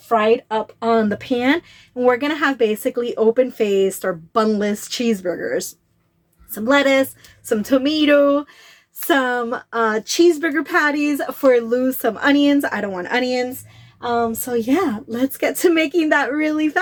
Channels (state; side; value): identical; both; correlation 1.00